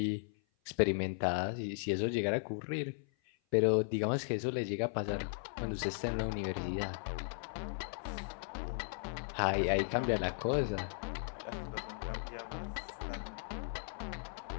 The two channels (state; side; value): silent; right; 53 dB below the other